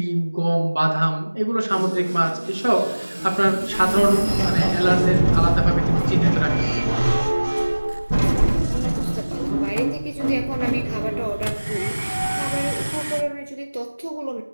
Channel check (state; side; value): inverted; both; correlation -1.00